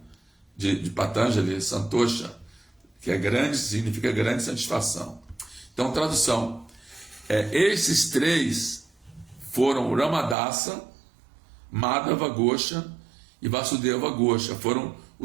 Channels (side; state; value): left; drops out; at 10.4 s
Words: De Patanjali, Santosha, que é grande, significa grande satisfação. Então, tradução: esses três foram Ramadasa, Madhava Gosha e Vasudeva Gosha. Foram